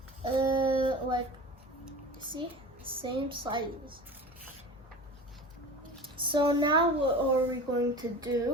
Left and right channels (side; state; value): both; normal; correlation 0.34